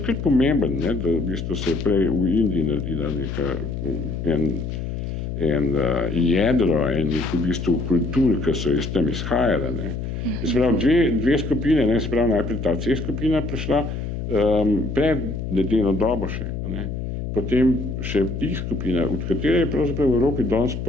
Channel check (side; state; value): left; noise; hum, 5 dB below the sound